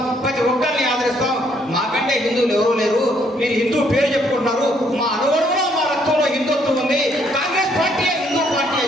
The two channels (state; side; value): normal; both; correlation 0.68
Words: ప్రతి ఒక్కరిని ఆదరిస్తాం. మాకంటే హిందువులు ఎవరూ లేరు, మీరు హిందూ పేరు చెప్పుకుంటున్నారు, మా అనుగుణంలో మా రక్తంలో హిందుత్వం ఉంది, కాంగ్రెస్ పార్టీ హిందూ పార్టీ